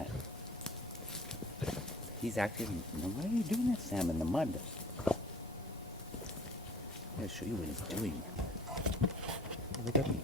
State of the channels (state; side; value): normal; both; correlation 0.49